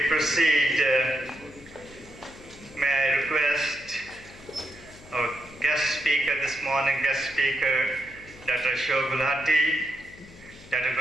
proceed, may I request our guest speaker this morning, Dr. Ashok Gulati, Dr.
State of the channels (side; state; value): left; noise; hum, 20 dB below the sound